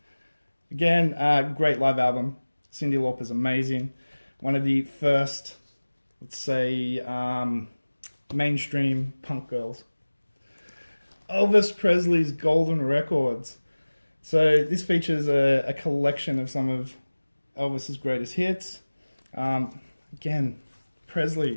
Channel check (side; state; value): both; inverted; correlation -1.00